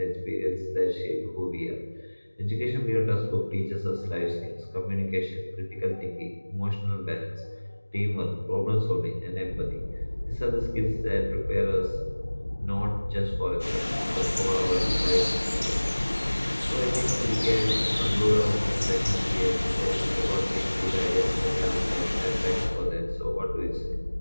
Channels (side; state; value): both; inverted; correlation -1.00